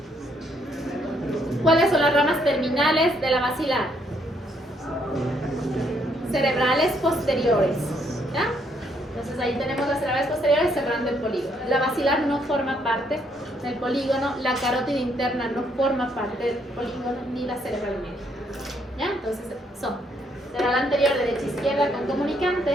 ¿Cuáles son las ramas terminales de la basilar? Cerebrales posteriores, ¿ya? Entonces ahí tenemos las cerebrales posteriores cerrando el polígono. La basilar no forma parte del polígono, la carótida interna no forma parte del polígono, ni la cerebral media, ¿ya? Entonces son cerebral anterior derecha-izquierda con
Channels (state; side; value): normal; both; correlation 0.71